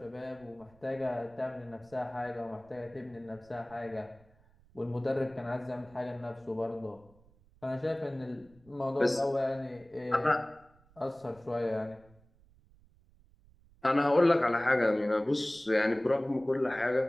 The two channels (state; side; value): noise; right; rumble, 29 dB below the sound